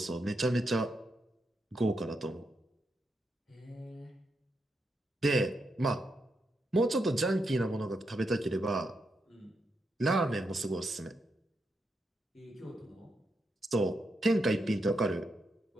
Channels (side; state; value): both; normal; correlation 0.83